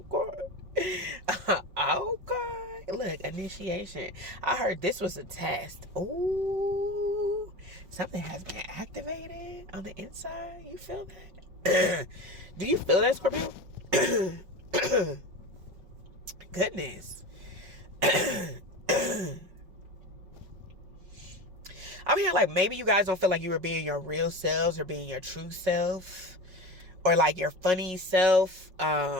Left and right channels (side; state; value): left; late; 5.4 ms